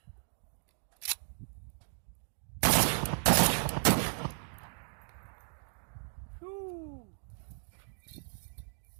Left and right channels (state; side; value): silent; left; digital silence